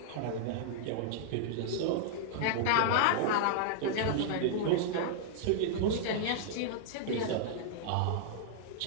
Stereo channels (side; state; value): both; different; correlation -0.01